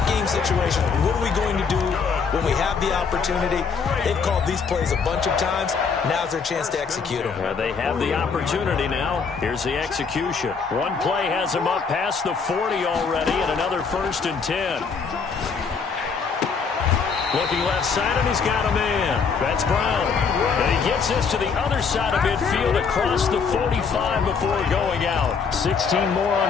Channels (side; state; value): right; quieter; 5.6 dB